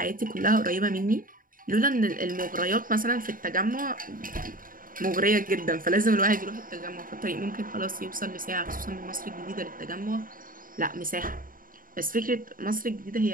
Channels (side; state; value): left; late; 0.40 ms